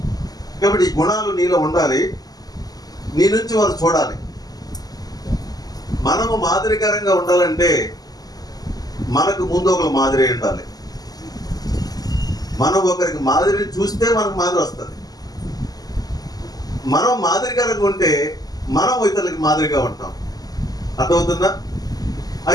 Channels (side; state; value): right; late; 0.18 ms